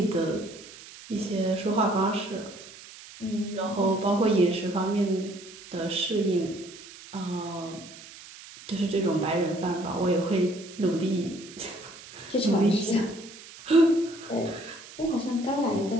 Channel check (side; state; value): right; noise; hiss, 17 dB below the sound